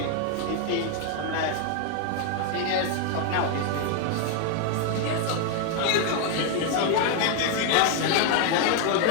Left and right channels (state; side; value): different; both; correlation 0.00